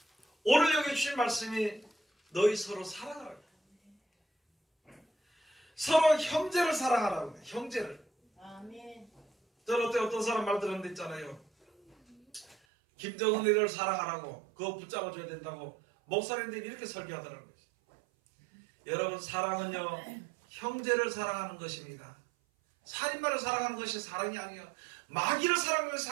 오늘 여기 주신 말씀이 너희 서로 사랑하라고, 서로 형제를 사랑하라고 해요. 형제를. 아멘. 저는 어떤 사람 말 들었는데 있잖아요. 김정은이를 사랑하라고, 그거 붙잡아줘야 된다고 목사님들이 이렇게 설교하더라고요. 여러분, 사랑은요 형제를 사랑하는 것입니다. 살인마를 사랑하는 것이 사랑이 아니에요. 마귀를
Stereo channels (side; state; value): left; drops out; at 12.6 s